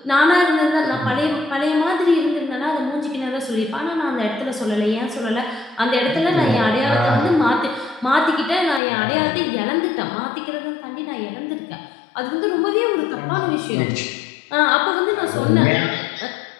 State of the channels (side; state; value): right; drops out; at 8.8 s